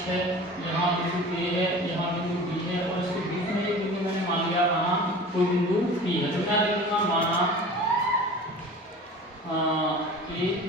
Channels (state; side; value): normal; both; correlation 0.39